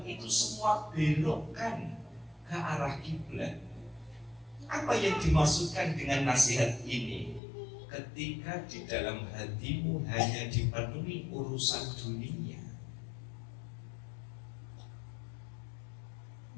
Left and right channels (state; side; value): drops out; right; at 7.4 s